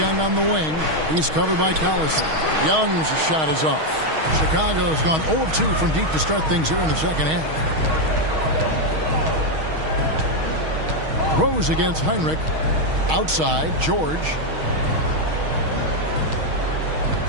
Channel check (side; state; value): left; late; 6.3 ms